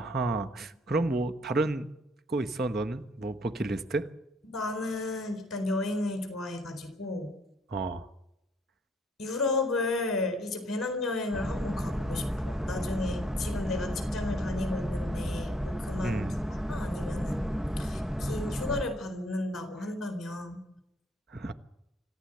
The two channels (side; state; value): both; normal; correlation 0.64